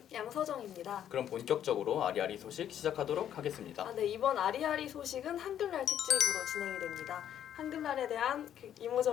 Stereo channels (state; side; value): quieter; right; 10.2 dB